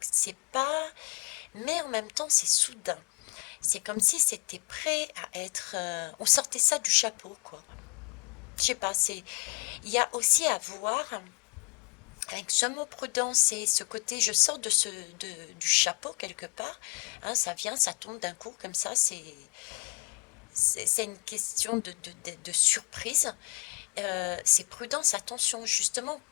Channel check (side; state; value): right; quieter; 33.9 dB